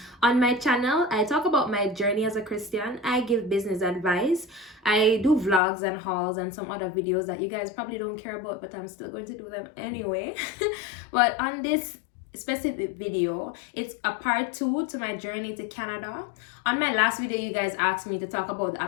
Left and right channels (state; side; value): drops out; right; at 5.6 s